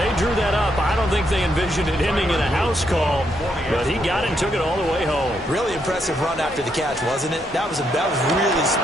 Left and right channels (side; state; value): both; normal; correlation 0.77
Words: drew that up, I don't think they envisioned it ending in a house call, but he got it and took it all the way home. Really impressive run after the catch, wasn't it? That was really